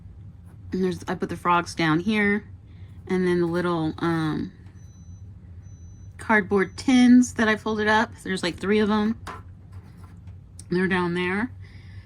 And I put the frogs down here, and then the little cardboard tins that I folded up. There's like 3 of them. They're down there.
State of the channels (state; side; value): identical; both; correlation 1.00